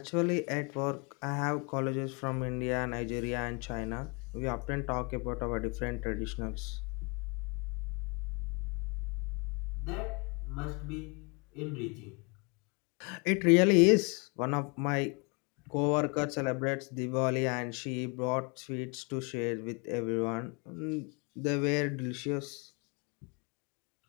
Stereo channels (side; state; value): right; quieter; 32.1 dB